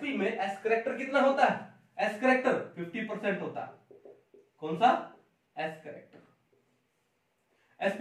में एस करेक्टर कितना होता है, एस करेक्टर 50% होता है। कौन सा, एस करेक्टर।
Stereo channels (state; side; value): identical; both; correlation 1.00